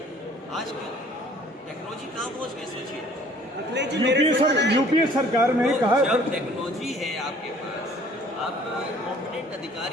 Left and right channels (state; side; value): normal; both; correlation 0.54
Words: आज की टेक्नोलॉजी कहाँ पहुँच गई, सोचिए। यूपीए सरकार में तो कहा, जब टेक्नोलॉजी है आपके पास, आप कॉम्पिटेंट